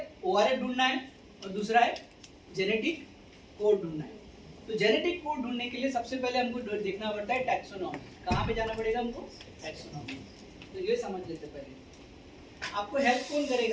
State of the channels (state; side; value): identical; both; correlation 1.00